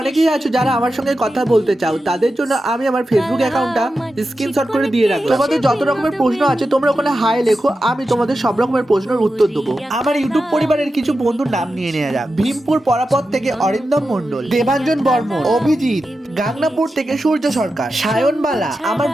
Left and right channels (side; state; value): both; normal; correlation 0.91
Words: অনেকেই আছো যারা আমার সঙ্গে কথা বলতে চাও, তাদের জন্য আমি আমার ফেসবুক অ্যাকাউন্টটা স্ক্রিনশট করে দিয়ে রাখলাম। তোমাদের যত রকমের প্রশ্ন আছে তোমরা ওখানে হাই লেখো, আমি তোমাদের সব রকমের প্রশ্নের উত্তর দেবো। আমার ইউটিউব পরিবারের কিছু বন্ধুর নাম নিয়ে নেওয়া যাক। ভীমপুর পরাপত থেকে অরিন্দম মণ্ডল, দেবাঞ্জন বর্মন, অভিজিৎ, গাংনাপুর থেকে সূর্য সরকার, সায়নবালা। আমার